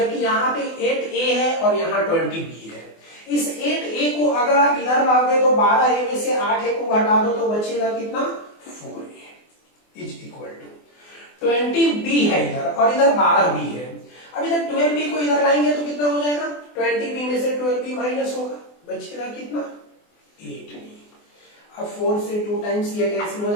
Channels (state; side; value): late; right; 24 ms